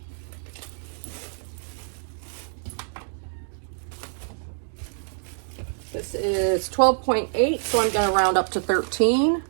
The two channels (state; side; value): silent; left; digital silence